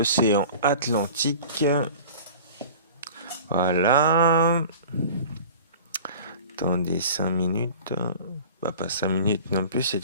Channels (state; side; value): inverted; both; correlation -0.41